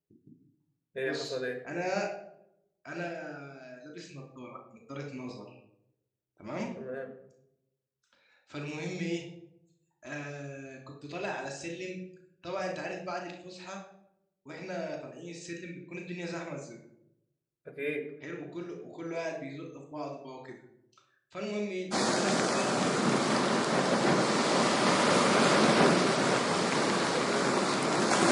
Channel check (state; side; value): identical; both; correlation 1.00